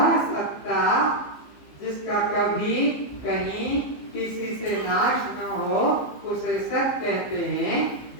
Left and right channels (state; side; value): late; right; 15 ms